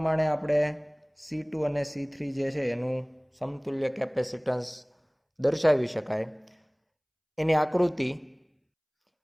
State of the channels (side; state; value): both; identical; correlation 1.00